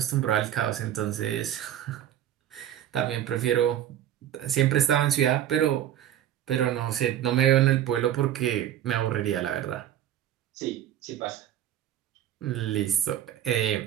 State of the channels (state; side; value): quieter; left; 11.2 dB